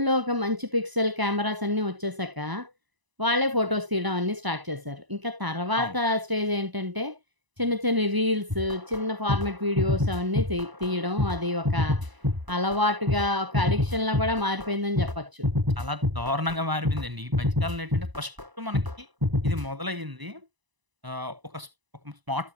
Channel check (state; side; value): late; left; 1.0 ms